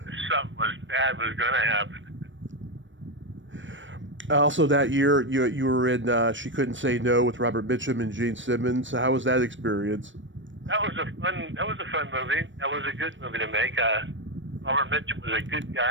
bad was going to happen. Also, that year you were in She Couldn't Say No with Robert Mitchum and Gene Simmons. So how was that experience? That was a fun movie. That was a good movie to make. Robert Mitchum was a good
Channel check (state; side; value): late; left; 0.55 ms